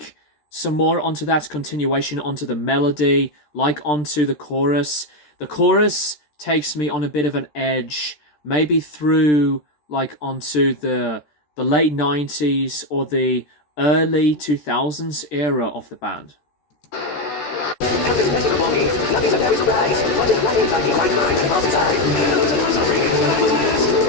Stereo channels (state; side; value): late; right; 13 ms